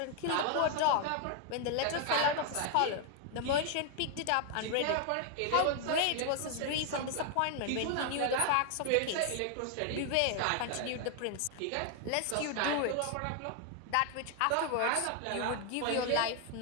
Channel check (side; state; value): both; different; correlation 0.00